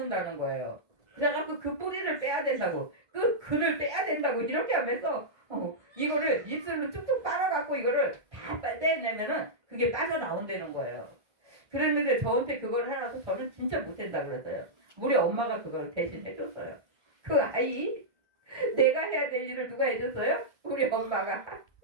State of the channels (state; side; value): late; left; 1.6 ms